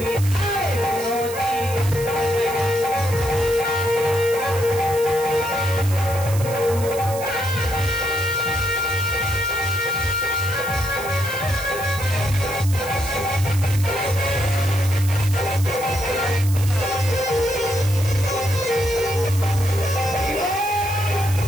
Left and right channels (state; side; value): noise; right; hiss, 12 dB below the sound